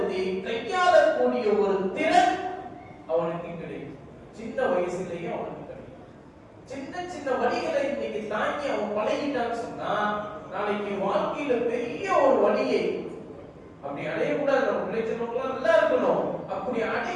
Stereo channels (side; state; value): both; identical; correlation 1.00